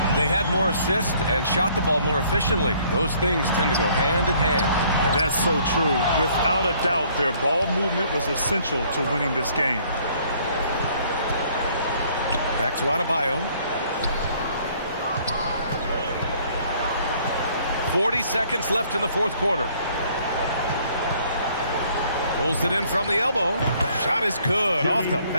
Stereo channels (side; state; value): both; inverted; correlation -0.61